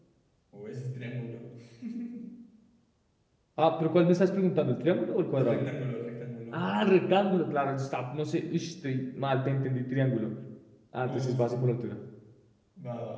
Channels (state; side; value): identical; both; correlation 1.00